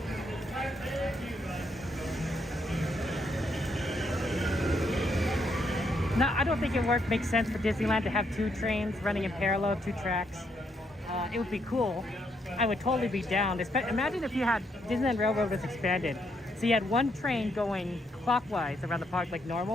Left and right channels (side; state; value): both; normal; correlation 0.75